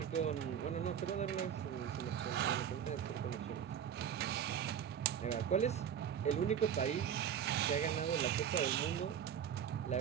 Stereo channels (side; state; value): left; quieter; 8.7 dB